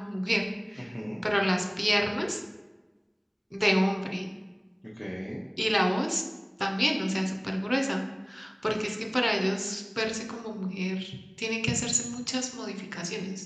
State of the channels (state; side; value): identical; both; correlation 1.00